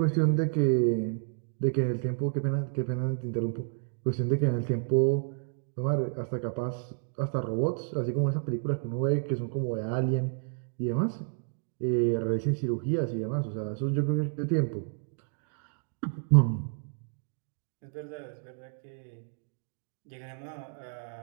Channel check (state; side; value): silent; left; digital silence